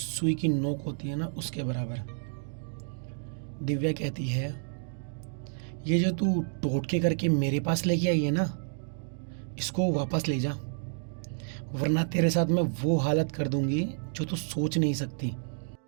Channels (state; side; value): silent; left; digital silence